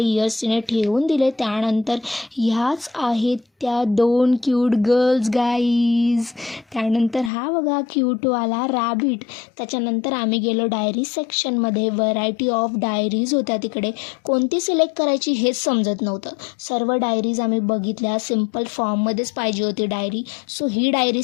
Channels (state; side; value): drops out; right; at 7.3 s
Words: इयर्स तिने ठेवून दिले. त्यानंतर ह्याच आहेत त्या 2 क्यूट गर्ल्स गाईज. त्यानंतर हा बघा क्यूटवाला रॅबिट. त्याच्यानंतर आम्ही गेलो डायरी सेक्शनमध्ये. व्हरायटी ऑफ डायरीज होत्या तिकडे. कोणती सिलेक्ट करायची हेच समजत नव्हतं. सर्व डायरीज आम्ही बघितल्या. सिम्पल फॉर्ममध्येच पाहिजे होती डायरी. सो ही डायरी